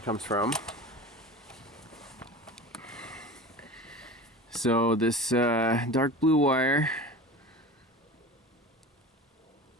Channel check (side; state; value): both; normal; correlation 0.34